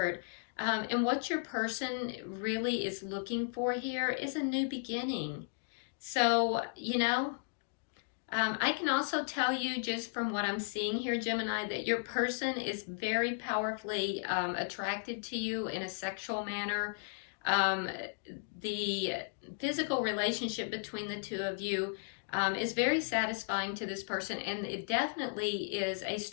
And what your person really is looking for here is a new beginning. So, you know, I can also tell you just from what I'm seeing here, Gemini, that your person is very powerfully attracted to you in a sexual manner. The physical relationship between the two of you is very satisfying to this person, and it definitely is a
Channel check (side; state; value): right; silent; digital silence